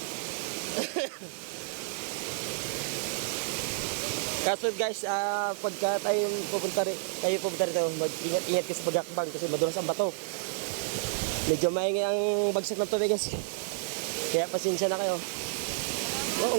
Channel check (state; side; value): silent; left; digital silence